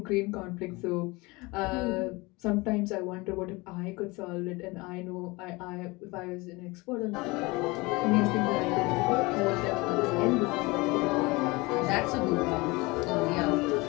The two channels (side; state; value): right; quieter; 24.0 dB